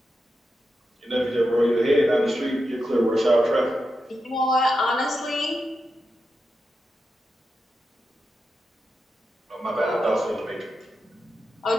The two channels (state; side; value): normal; both; correlation 0.88